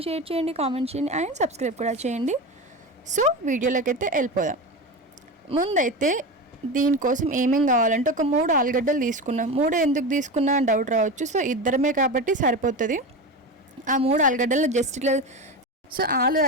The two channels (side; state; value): both; normal; correlation 0.23